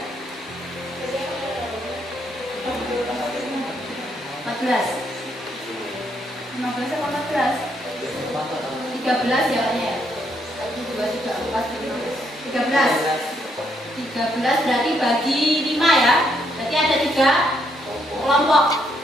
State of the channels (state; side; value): normal; both; correlation 0.74